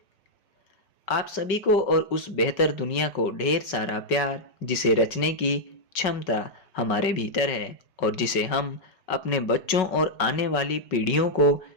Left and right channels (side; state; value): right; late; 5.3 ms